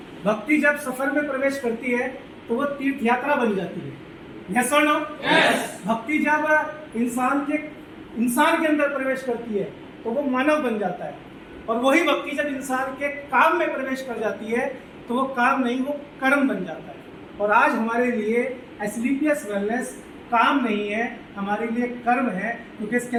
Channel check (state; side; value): identical; both; correlation 1.00